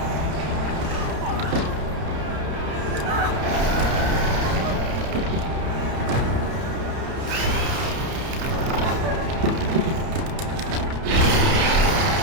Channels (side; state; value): left; late; 31 ms